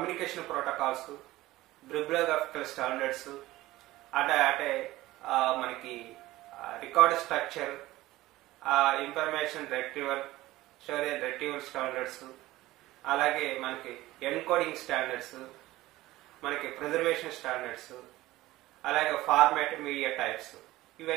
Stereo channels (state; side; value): quieter; left; 17.3 dB